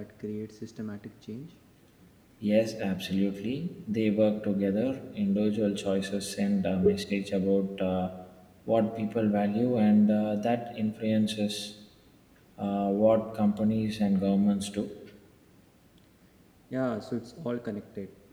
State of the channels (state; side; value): identical; both; correlation 1.00